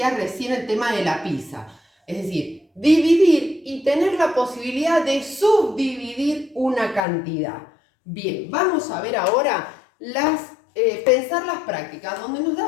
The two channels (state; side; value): drops out; right; at 7.0 s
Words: recién, el tema de la pizza. Es decir, dividir y tener la posibilidad de subdividir una cantidad. Bien, vamos a ver ahora pensar las prácticas, donde nos